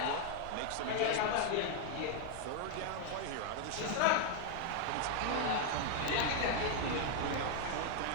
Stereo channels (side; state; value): both; different; correlation 0.00